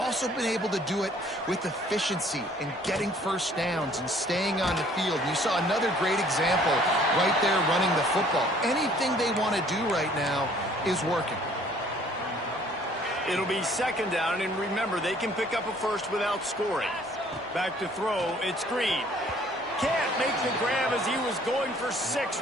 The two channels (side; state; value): both; normal; correlation 0.57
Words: been able to do it with efficiency and getting first downs and staying on the field. You saw another great example right there running the football. Anything they want to do right now is working. It'll be 2nd down, and remember, they can pick up a first without scoring. Back to throw, it's Green. Can't make the grab as he was going for 6